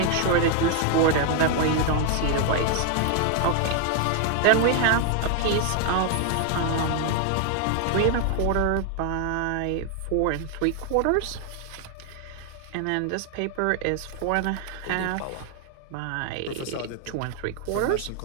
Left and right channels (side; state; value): both; different; correlation 0.00